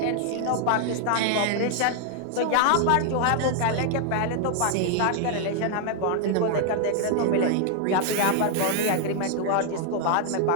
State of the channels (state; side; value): different; both; correlation 0.00